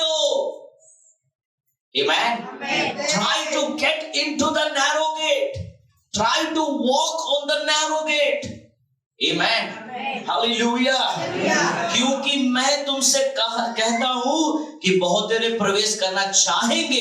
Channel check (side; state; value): both; identical; correlation 1.00